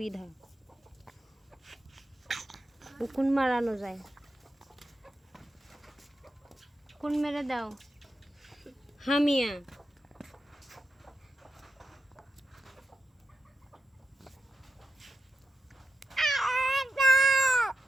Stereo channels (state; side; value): normal; both; correlation 0.87